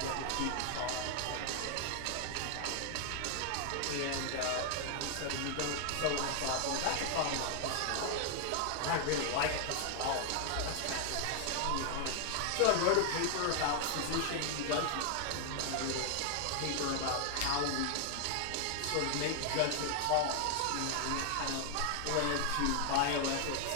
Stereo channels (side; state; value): both; different; correlation 0.00